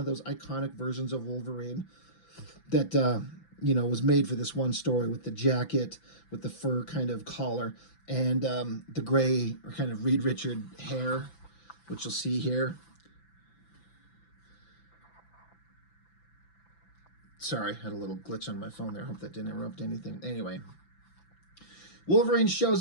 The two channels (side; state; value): right; late; 5.9 ms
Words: those iconic versions of Wolverine that was made for this one story with the jacket, with the fur kind of collar, and the gray or kind of Reed Richard hair, which you'll see here. Sorry, I had a little glitch on my phone there. I hope that didn't interrupt anything. Anyway, Wolverine shows